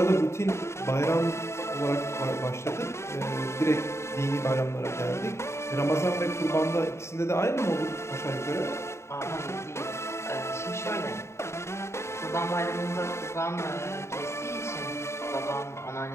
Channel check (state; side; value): late; right; 0.13 ms